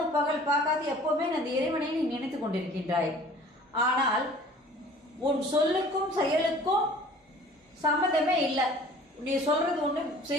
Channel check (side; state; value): both; normal; correlation 0.49